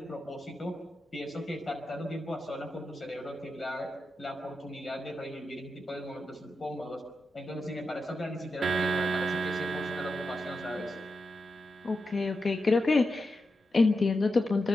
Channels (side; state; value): both; normal; correlation 0.88